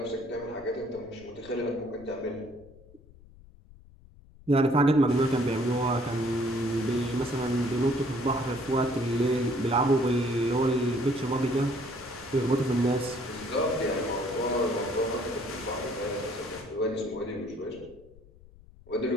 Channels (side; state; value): left; noise; rumble, 23 dB below the sound